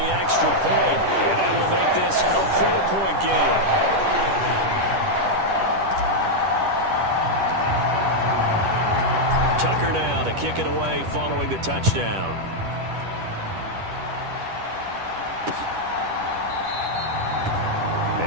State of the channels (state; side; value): late; left; 10 ms